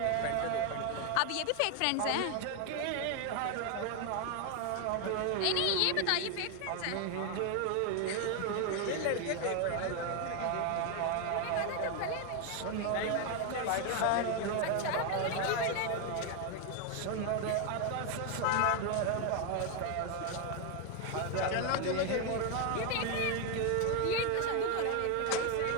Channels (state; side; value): different; both; correlation 0.01